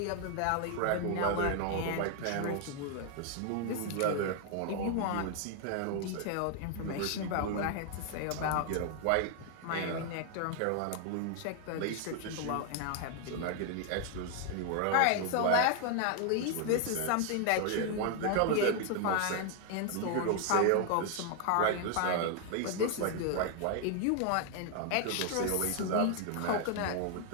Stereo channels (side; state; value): both; different; correlation 0.00